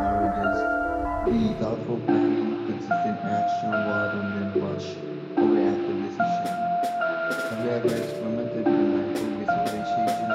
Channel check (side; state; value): both; identical; correlation 1.00